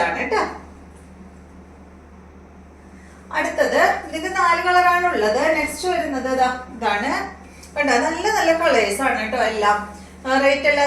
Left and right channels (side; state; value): both; identical; correlation 1.00